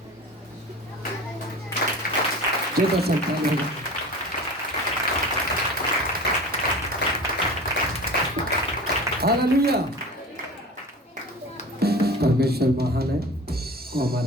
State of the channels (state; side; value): normal; both; correlation 0.36